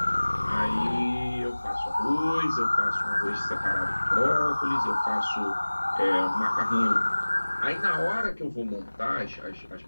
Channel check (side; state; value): both; inverted; correlation -1.00